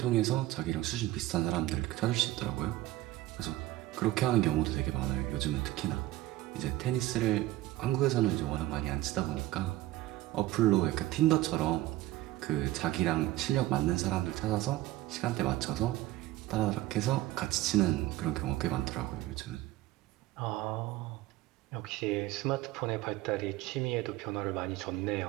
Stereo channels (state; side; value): quieter; left; 16.2 dB